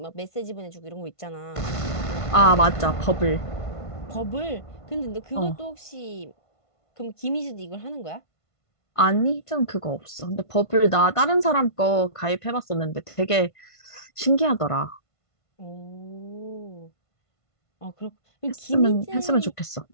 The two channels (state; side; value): late; right; 1.5 ms